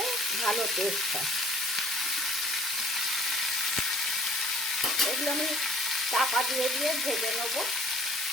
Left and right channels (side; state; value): both; normal; correlation 0.53